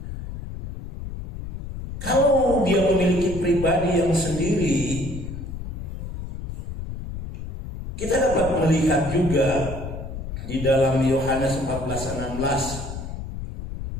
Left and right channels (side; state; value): left; noise; rumble, 8 dB below the sound